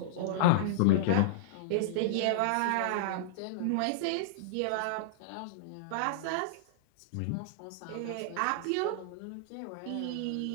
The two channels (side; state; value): both; different; correlation -0.02